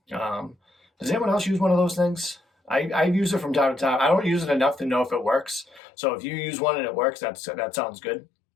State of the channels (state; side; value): drops out; right; at 5.8 s